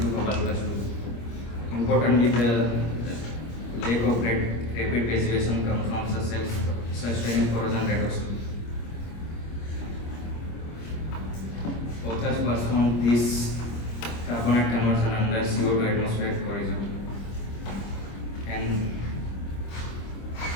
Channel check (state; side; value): late; right; 25 ms